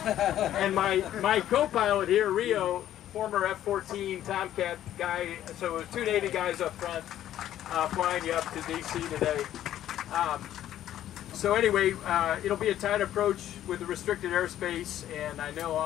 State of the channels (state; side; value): quieter; right; 12.0 dB